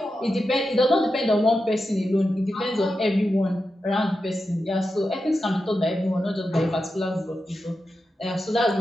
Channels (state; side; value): normal; both; correlation 0.90